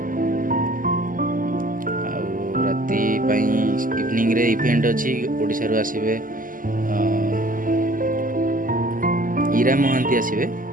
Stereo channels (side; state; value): left; late; 0.40 ms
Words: राति इवनिंग रे इवेंट अच्छी ओडिशा रू आसीबे ईरा महांती आसीबे